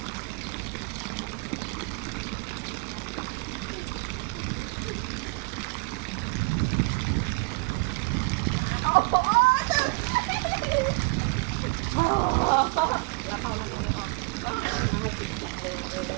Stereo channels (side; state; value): left; quieter; 28.3 dB